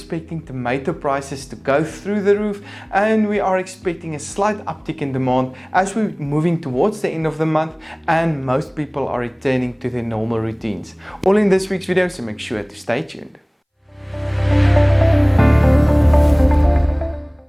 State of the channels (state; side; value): identical; both; correlation 1.00